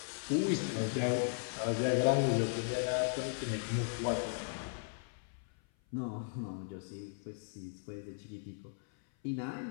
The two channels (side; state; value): right; silent; 53 dB below the other